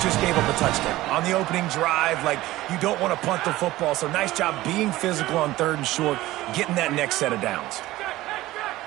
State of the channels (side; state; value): left; quieter; 16.9 dB